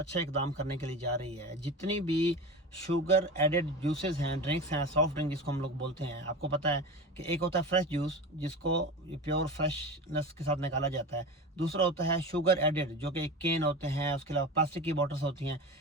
इकदाम करने के लिए जा रही है। जितनी भी शुगर एडेड जूसेस हैं, ड्रिंक्स हैं, सॉफ्ट ड्रिंक जिसको हम लोग बोलते हैं, आपको पता है कि एक होता है फ्रेश जूस जिसको प्योर फ्रेशनेस के साथ निकाला जाता है। दूसरा होता है शुगर एडेड जो कि केन होते हैं, उसके अलावा प्लास्टिक की बॉटल्स होती हैं,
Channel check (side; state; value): both; normal; correlation 0.29